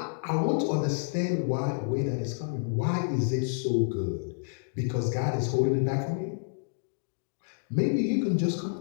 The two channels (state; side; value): silent; right; digital silence